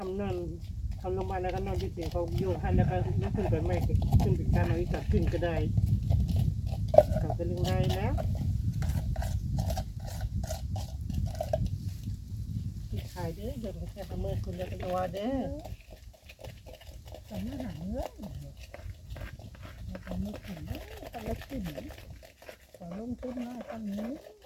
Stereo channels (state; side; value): identical; both; correlation 1.00